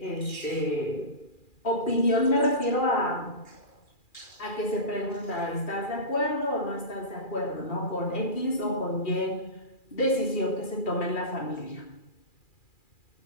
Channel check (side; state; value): right; late; 2.4 ms